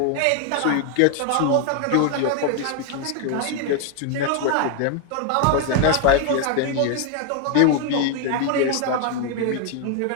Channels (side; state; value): both; different; correlation 0.01